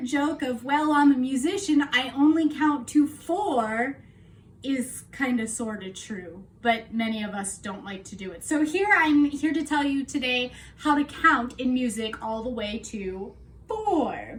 joke of, well, I'm a musician, I only count to 4 is kind of sort of true, but many of us don't like to do it. So I'm here to tell you today how to count in music all the way to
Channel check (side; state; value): both; identical; correlation 1.00